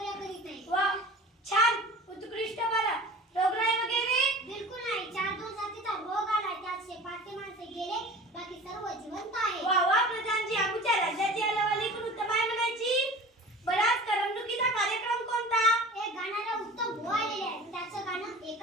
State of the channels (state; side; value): normal; both; correlation 0.40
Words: करीत नाही. वा, छान, उत्कृष्ट. बरं, रोगराई वगैरे? बिलकुल नाही. 4 जातीचा रोग आला, त्यात 5 माणसे गेले, बाकी सर्व जिवंत आहे. वा वा प्रधानजी, आमच्या राज्याची हलवाली पण उत्तम आहे म्हणायची. बराच करमणुकीचा कार्यक्रम कोणता? एक गाणारा उत्तम भाऊ आलेले आहे, त्याचं गाणं